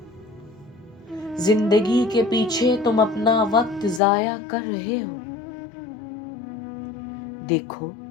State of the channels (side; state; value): right; drops out; at 4.0 s